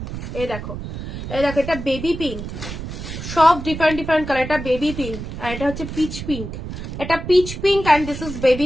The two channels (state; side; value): noise; right; rumble, 8 dB below the sound